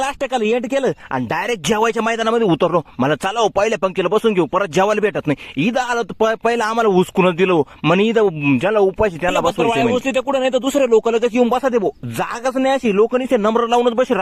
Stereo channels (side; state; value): both; identical; correlation 1.00